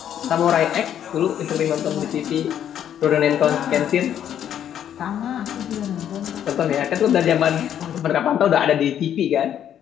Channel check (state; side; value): quieter; right; 9.9 dB